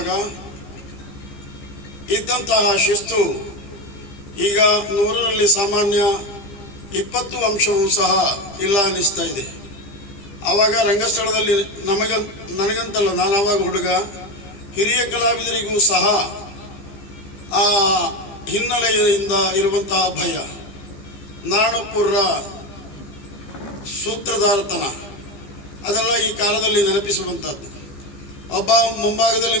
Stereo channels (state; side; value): late; right; 15 ms